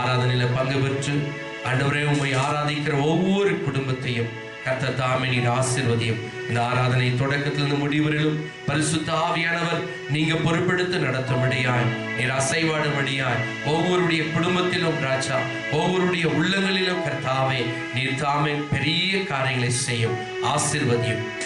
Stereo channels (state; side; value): identical; both; correlation 1.00